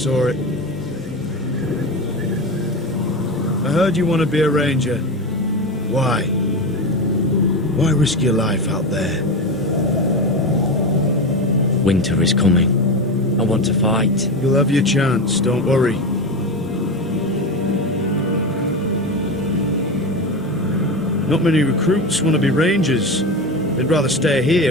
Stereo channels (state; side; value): normal; both; correlation 0.20